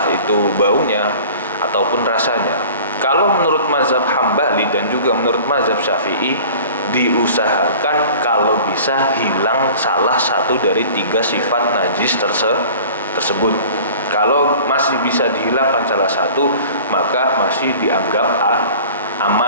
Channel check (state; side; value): inverted; both; correlation -0.44